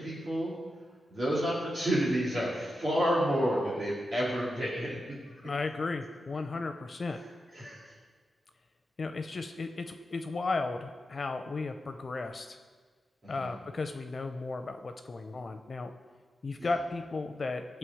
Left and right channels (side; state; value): both; normal; correlation 0.89